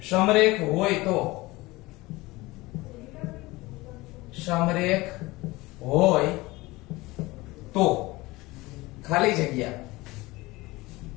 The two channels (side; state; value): right; quieter; 21.0 dB